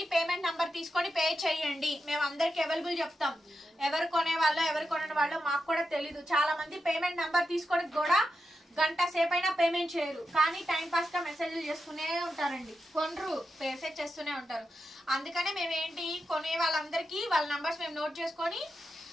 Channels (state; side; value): normal; both; correlation 0.88